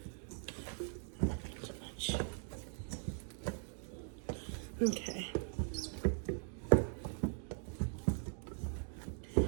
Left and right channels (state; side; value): silent; left; 51 dB below the other